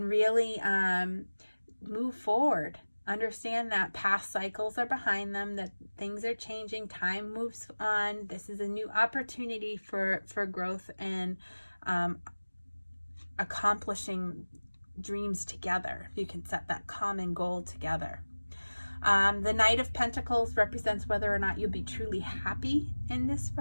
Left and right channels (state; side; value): inverted; both; correlation -1.00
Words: really move forward. Understand that past cycles are behind them, that things are changing, time moves on. This is a new opportunity for growth and accomplishing dreams together. You can set that common goal together. The Knight of Pentacles represents whether or not you'll be truly happy in this